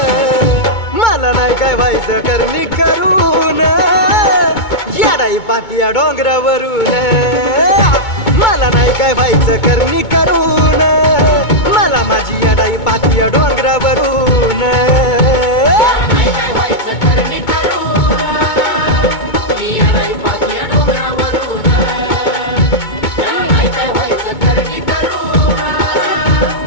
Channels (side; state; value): right; late; 2.2 ms